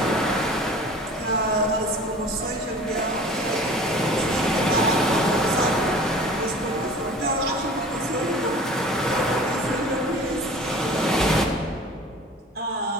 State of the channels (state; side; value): normal; both; correlation 0.43